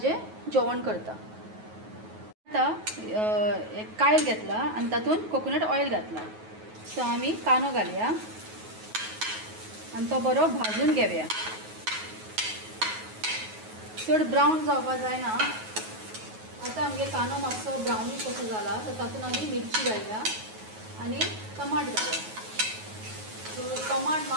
जेवण करता. आतां एक कायल घेतला आनी तातूंत कोकोनट ऑयल घातला. सो आमी कांदो घालया आनी तो बरो भाजून घेवया. चड ब्रावन जावपा जायना. आतां आमगे कांदो मातसो ब्रावनीश कसो जाला, सो तातूंत आमी मिरची घालया आनी टमाट घालया. सो टमाट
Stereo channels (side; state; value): left; late; 9.3 ms